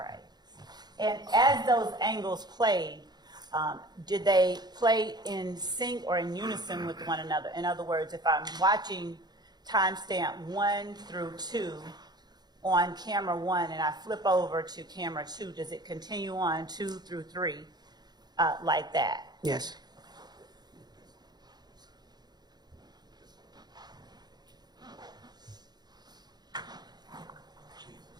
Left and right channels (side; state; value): left; late; 0.20 ms